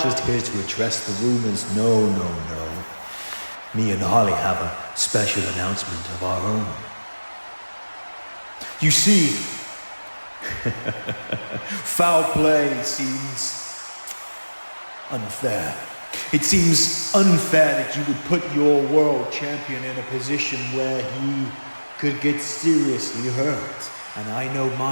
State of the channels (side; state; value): both; inverted; correlation -1.00